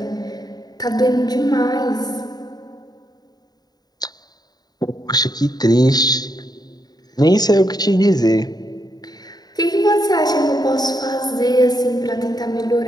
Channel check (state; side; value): late; right; 0.19 ms